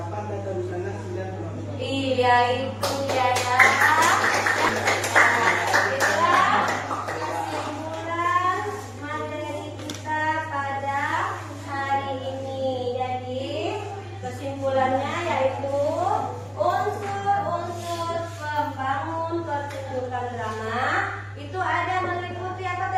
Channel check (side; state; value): both; identical; correlation 1.00